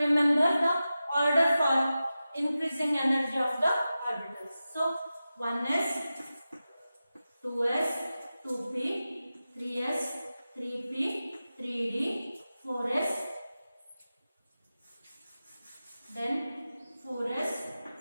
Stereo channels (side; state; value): both; inverted; correlation -0.94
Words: remember the order for increasing energy of the orbitals. So 1s, 2s, 2p, 3s, 3p, 3d, 4s, then 4s,